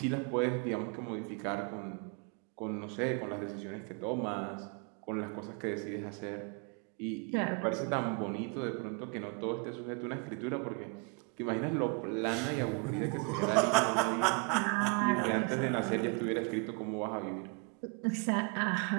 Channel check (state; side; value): quieter; left; 34.5 dB